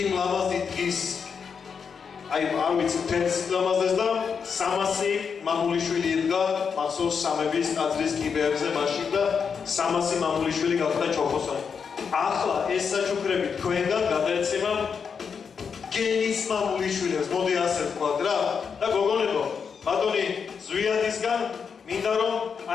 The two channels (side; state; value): right; quieter; 6.3 dB